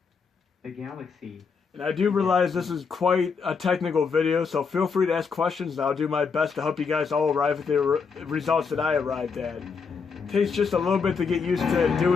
The galaxy... And I do realize this is quite a technical video, so feel free to ask questions and I'll do my best to help you guys all arrive at the results that I arrived at. It takes just a little bit to get used to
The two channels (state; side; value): quieter; right; 5.4 dB